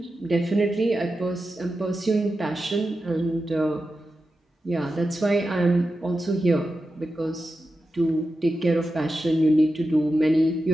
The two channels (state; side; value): normal; both; correlation 0.91